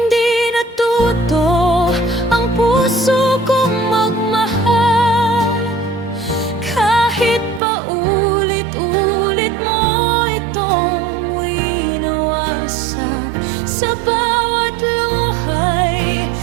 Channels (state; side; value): drops out; left; at 7.6 s